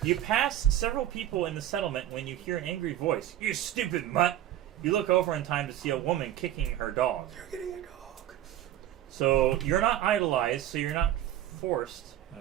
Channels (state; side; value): quieter; left; 12.3 dB